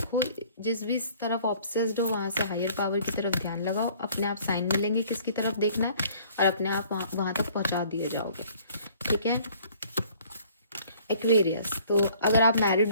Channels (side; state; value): both; inverted; correlation -0.55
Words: जिस भी तरफ ऑब्सेस्ड हो वहाँ से हायर पावर की तरफ ध्यान लगाओ, अपने आप साइन मिलेंगे किसकी तरफ देखना है और अपने आप वहाँ तक पहुँचा दिए जाओगे। ठीक है। एक्वेरियस, तो अगर आप